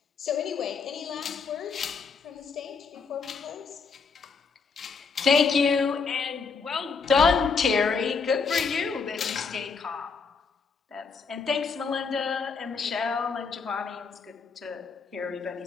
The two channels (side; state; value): right; quieter; 5.3 dB